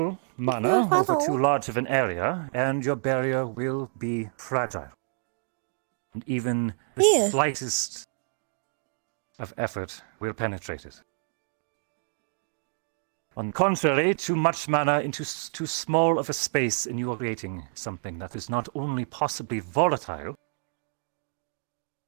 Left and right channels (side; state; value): left; silent; digital silence